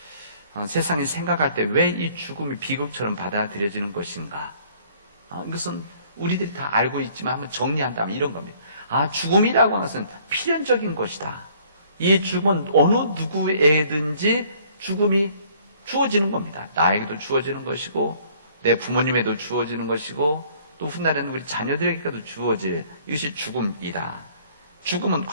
세상이 생각할 때 왜 이 죽음이 비극처럼 받아들여지는 것인가? 이것은 우리들이 다 알고 있지만 한번 정리한다면 이런 겁니다. 죽음이라고 하는 것은 필연적인 것이다. 이 죽음은 어느 누구에든지 죽음이 주어지는 겁니다. 나에게도 주어지는 것이고 내 부모님에도 주어지는 것이고 또 훗날에는 우리 자녀들에게도 주어질 이것이 죽음이다. 죽음은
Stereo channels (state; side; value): inverted; both; correlation -0.58